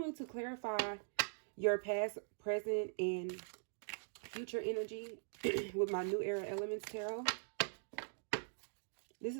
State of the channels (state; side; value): silent; left; digital silence